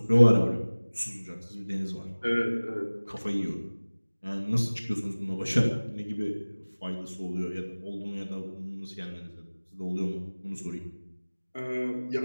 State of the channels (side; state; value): both; inverted; correlation -1.00